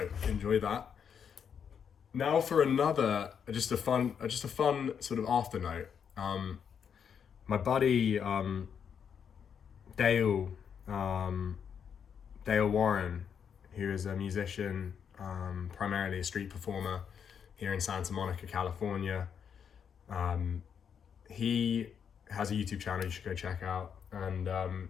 enjoy that. Now for another, just a fun sort of after note. My buddy Dale Warren, who is a musician, primarily a street performer here in Santa Monica, California. He has a YouTube channel you should go check out, and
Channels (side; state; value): right; quieter; 7.4 dB